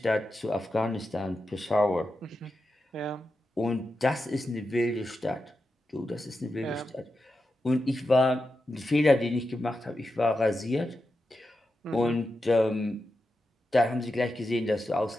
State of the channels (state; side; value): normal; both; correlation 0.89